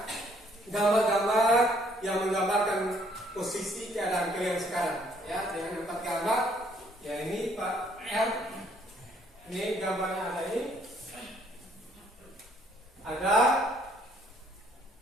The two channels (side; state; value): both; normal; correlation 0.65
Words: gambar-gambar yang menggambarkan posisi keadaan kalian sekarang ya, dengan 4 gambar ya. Ini Pak R, ini gambarnya ada, ini ada